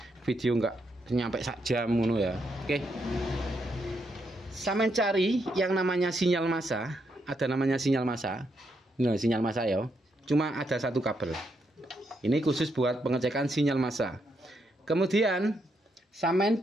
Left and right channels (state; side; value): normal; both; correlation 0.79